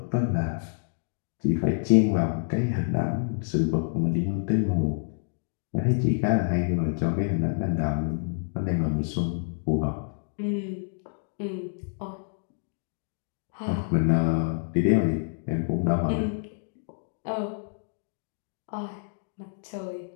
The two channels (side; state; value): right; silent; digital silence